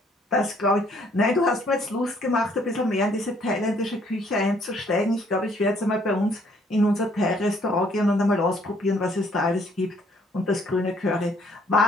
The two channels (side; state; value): both; normal; correlation 0.64